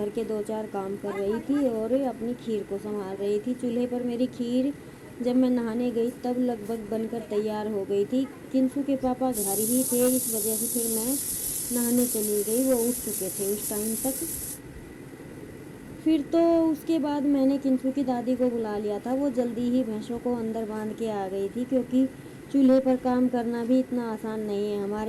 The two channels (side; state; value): both; identical; correlation 1.00